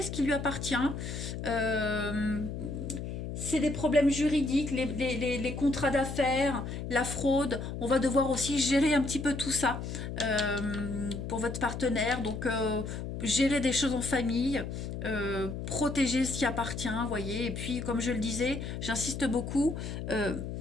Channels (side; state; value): left; noise; hum, 6 dB below the sound